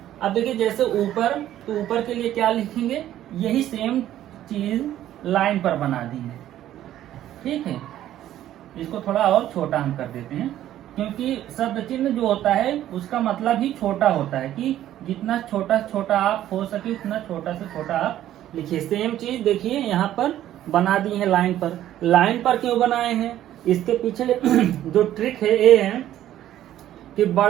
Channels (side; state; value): left; quieter; 12.5 dB